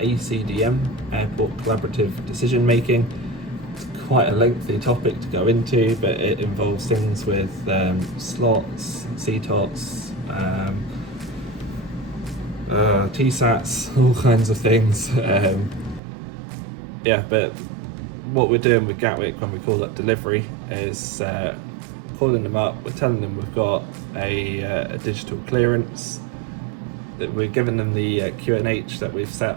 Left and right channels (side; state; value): left; drops out; at 16.0 s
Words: Airport Collaborative Decision Making. It's quite a lengthy topic to go into, but it involves things with slots, CTOTs, TSATs, all kinds of things. Yeah, but what we're doing with Gatwick when we call up delivery is calling them up, we're telling them we've got a digital clearance, that we're giving them the QNH that we've set